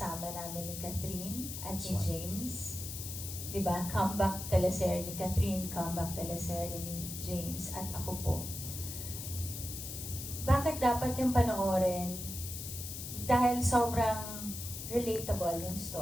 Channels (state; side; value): noise; left; hiss, 8 dB below the sound